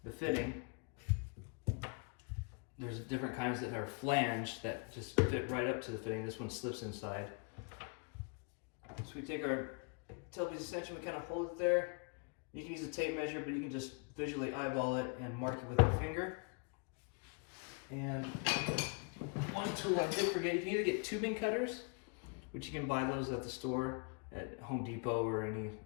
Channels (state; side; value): quieter; right; 34.8 dB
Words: the fitting. There's different kinds that are flanged that just fit right up to the fitting. This one slips inside. So we take our tailpiece extension, we kind of hold it there. You can use a tape measure, but you can just visually eyeball it and mark it with your finger. And one tool I did forget, you can either get tubing cutters, which you can buy those at the store, at Home Depot or any